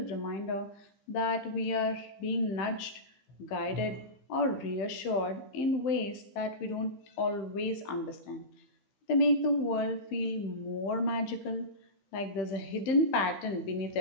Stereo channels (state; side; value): late; right; 15 ms